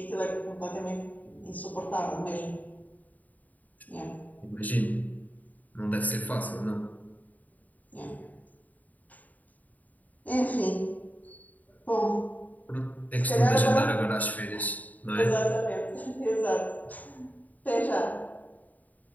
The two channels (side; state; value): right; late; 0.077 ms